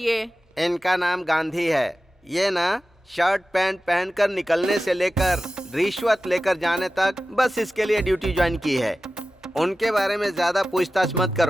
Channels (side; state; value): both; normal; correlation 0.95